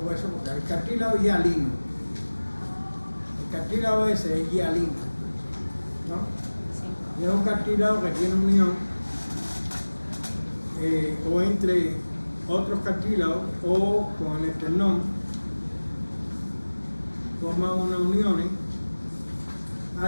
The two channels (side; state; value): both; inverted; correlation -1.00